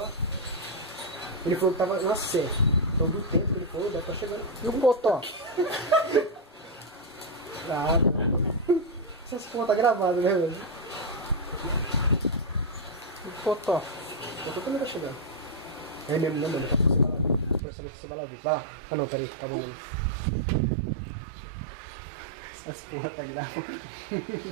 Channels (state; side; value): drops out; left; at 17.6 s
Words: Ele falou que tava na C. Então do tempo que ele falou, deve estar chegando. E o Potó? Nada. Essas porra tá gravada, né, velho? E o Potó? Eu tô também tá chegando. É mesmo, né, mano? Pra saber se você vai lá ver. Vai lá. Ah não, peraí, tá bom. Essas porra tá gravada.